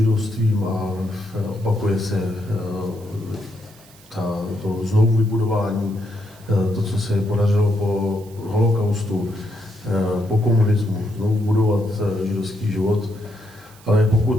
a opakuje se to znovu vybudování, to, co se podařilo po holokaustu, po komunismu, znovu budovat židovský život. Ale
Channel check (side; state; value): right; noise; hiss, 25 dB below the sound